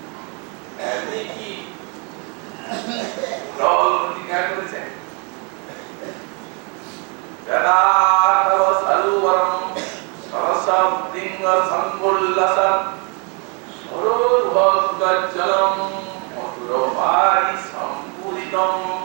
আপনি কি প্রতিজ্ঞা করেছেন? যদা তব সরোবরম সরসম লিঙ্গ সম্বুল্লসম সরোর্ভগজ্জলম মধুরভারি সম্পূরিতম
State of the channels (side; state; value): left; quieter; 35.3 dB